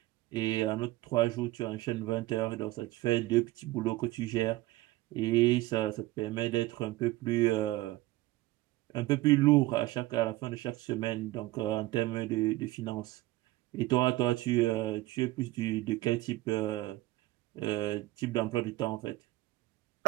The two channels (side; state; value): left; quieter; 18.1 dB